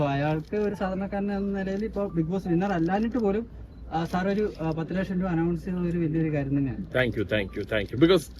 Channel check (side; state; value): both; identical; correlation 1.00